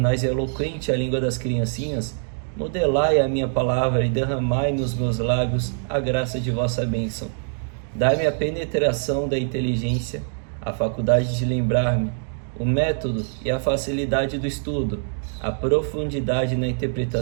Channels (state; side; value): silent; left; digital silence